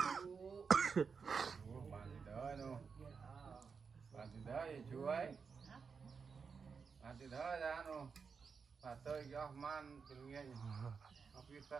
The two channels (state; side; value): quieter; left; 5.6 dB